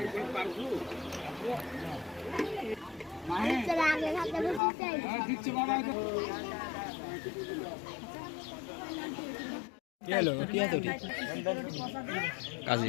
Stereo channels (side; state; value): right; drops out; at 4.6 s